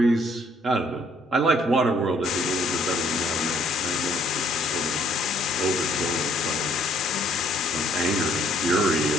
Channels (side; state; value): both; normal; correlation 0.64